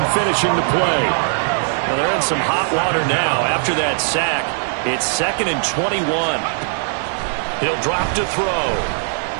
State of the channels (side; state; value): left; silent; 61 dB below the other